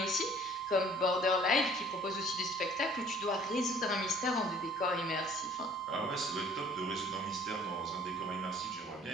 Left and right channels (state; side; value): normal; both; correlation 0.54